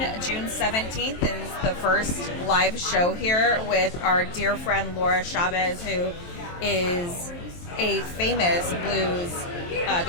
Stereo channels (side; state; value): right; late; 23 ms